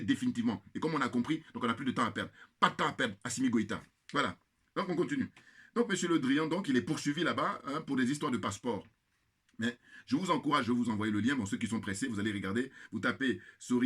Et comme on a compris, donc on n'a plus de temps à perdre. Pas de temps à perdre, Assimi Goïta. Voilà. Donc on continue. Donc M. Le Drian, donc, il est poursuivi là-bas hein, pour des histoires de passeport. Mais je vous encourage, je vais vous envoyer le lien. Bon, ceux qui sont pressés, vous allez regarder. Vous tapez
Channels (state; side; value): identical; both; correlation 1.00